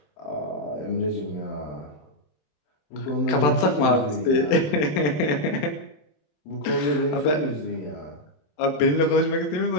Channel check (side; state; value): right; late; 27 ms